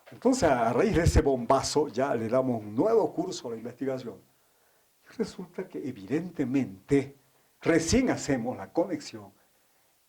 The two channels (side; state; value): both; identical; correlation 1.00